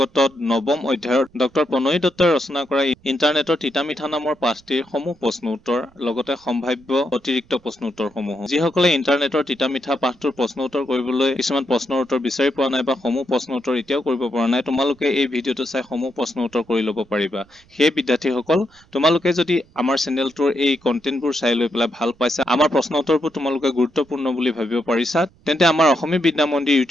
নৱম অধ্যায়ৰ ডক্টৰ প্ৰণয় দত্তই ৰচনা কৰা ইণ্টাৰনেটৰ তিতামিঠা নামৰ পাঠটিৰ সমূহ প্ৰশ্ন উত্তৰ লগতে সম্ভাৱ্য অতিৰিক্ত প্ৰশ্ন উত্তৰসমূহ। যিসকলে ইণ্টাৰনেটৰ তিতামিঠা পাঠটোৰ প্ৰশ্ন উত্তৰ কৰিবলৈ কিছুমান প্ৰশ্নৰ উত্তৰ বিচাৰি পোৱা নাই বা সমূহ প্ৰশ্ন উত্তৰ এতিয়াও কৰিব পৰা নাই, তোমালোকে এই ভিডিঅ'টো চাই সমূহ প্ৰশ্ন উত্তৰ কৰি ল'ব পাৰিবা। সেই বিদ্যাৰ্থীসকল, তোমালোকে যদি আমাৰ চেনেলটোৰ এই কণ্টেণ্টবোৰ চাই লৈ পেলাই ভাল পাইছা, আমাৰ প্ৰশ্ন উত্তৰবোৰ তোমালোকে গুৰুত্বপূৰ্ণ বুলি ভাবিব পাৰিছা, তেন্তে আমাৰ অসমীয়া বিদ্যা মন্দিৰ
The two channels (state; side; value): noise; right; rumble, 30 dB below the sound